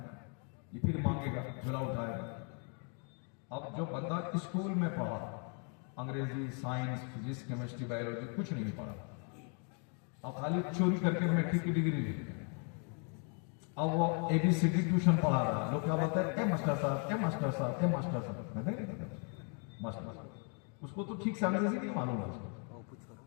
یہ پھر مانگے گا جھولا اٹھائے گا. اب جو بندہ اسکول میں پڑھا انگریزی سائنس فزکس کیمسٹری بایولوجی کچھ نہیں پڑھا, اب خالی چوری کر کے میٹرک کی ڈگری لے لی, اب وہ اے بی سی ڈی ٹیوشن پڑھا رہا, لوگ کیا بولتے ہیں اے ماسٹر صاحب اے ماسٹر صاحب اے ماسٹر صاحب, ماسٹر صاحب اس کو تو ٹھیک سے انگریزی نہیں معلوم ہے اس کو,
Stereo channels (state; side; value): quieter; right; 39.7 dB